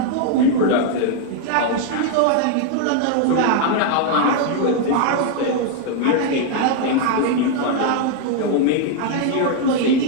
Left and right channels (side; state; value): both; different; correlation 0.00